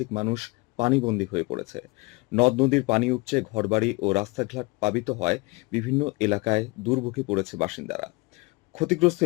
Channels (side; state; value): right; quieter; 24.9 dB